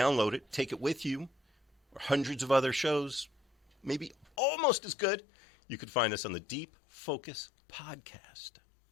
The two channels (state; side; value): drops out; right; at 4.3 s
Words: it, take it with you, or hundreds of other shows, maybe almost as good, you could find us on the Deep Focus Podcast